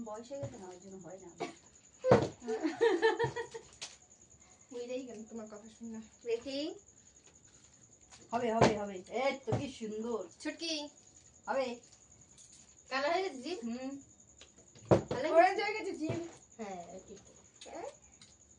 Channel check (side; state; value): both; identical; correlation 1.00